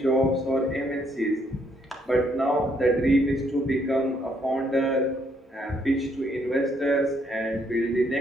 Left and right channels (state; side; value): normal; both; correlation 0.71